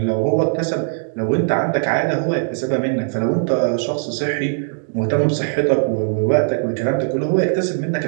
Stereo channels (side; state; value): left; silent; digital silence